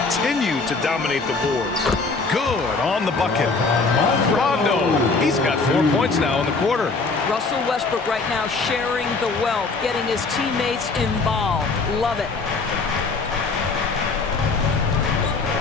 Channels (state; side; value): quieter; right; 4.1 dB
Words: to dominate the boards. Good on the bucket. Rondo. He's got 4 points now in the quarter. Russell Westbrook right now sharing the wealth, getting his teammates involved. Love it.